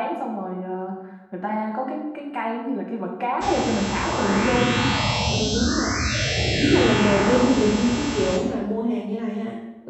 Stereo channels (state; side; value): identical; both; correlation 1.00